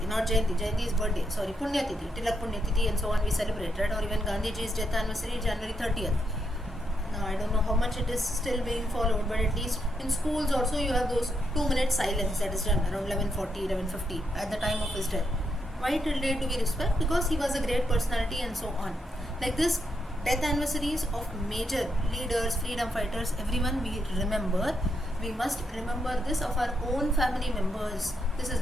not Jayanti. Jayanti is birthday. Sorry, Punya Tithi, Tilak Punya Tithi, and so on. We celebrate, right? Or even Gandhiji's death anniversary, January 30th. Now I don't know how much it is still being followed, but at least in schools also you have those 2-minute silence that is done around 11:40, 11:50 at the time of his death. Why till date do we respect? Because he was a great personality and so on. Like this, death anniversaries of major leaders, freedom fighters, everyone we remember. We must remember this of our own family members. This is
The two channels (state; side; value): normal; both; correlation 0.80